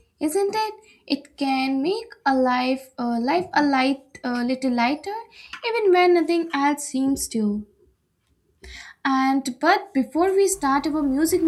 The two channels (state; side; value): identical; both; correlation 1.00